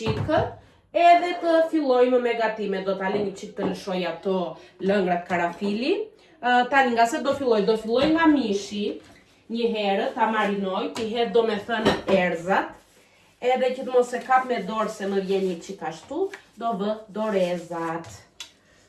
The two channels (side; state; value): both; identical; correlation 1.00